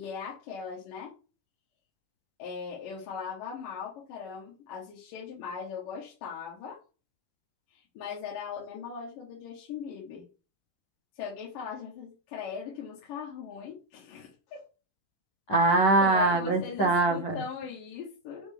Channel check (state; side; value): late; right; 11 ms